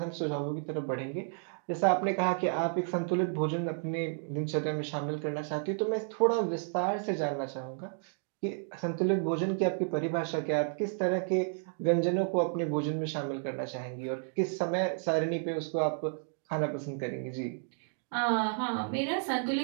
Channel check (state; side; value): silent; left; 57 dB below the other